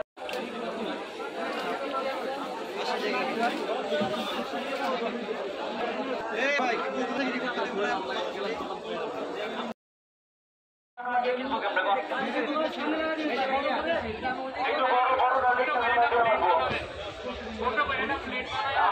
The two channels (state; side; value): identical; both; correlation 1.00